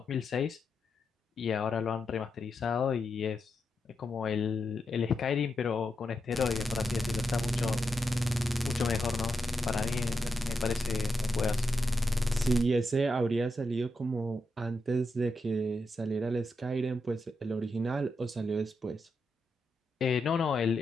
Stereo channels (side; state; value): both; normal; correlation 0.85